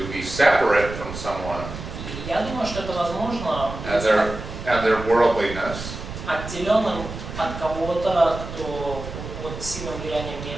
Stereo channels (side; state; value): right; noise; rumble, 9 dB below the sound